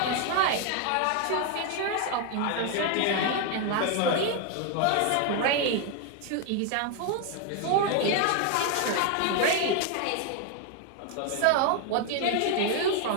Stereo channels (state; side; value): different; both; correlation 0.01